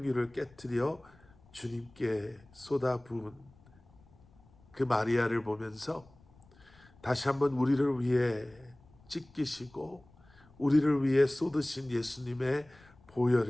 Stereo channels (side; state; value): left; noise; rumble, 27 dB below the sound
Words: 깨뜨려 주님께 쏟아부은 그 마리아를 보면서 다시 한번 우리를 위해 찢기시고 우리를 위해 쏟으신 예수님의